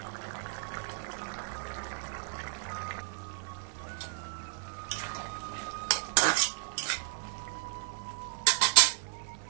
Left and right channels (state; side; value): silent; left; digital silence